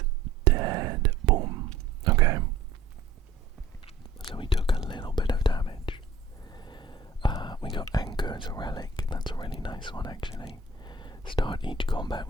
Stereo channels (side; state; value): left; quieter; 4.0 dB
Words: dead. Boom. Okay. So we took a little bit of damage. We got Anchor as a relic. That's a really nice one, actually. Start each combat